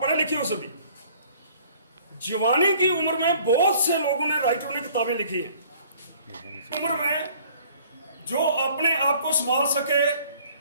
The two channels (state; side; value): inverted; both; correlation -0.54